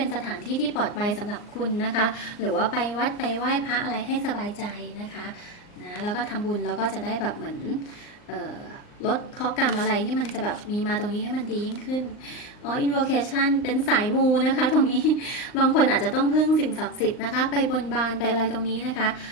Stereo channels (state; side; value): late; right; 39 ms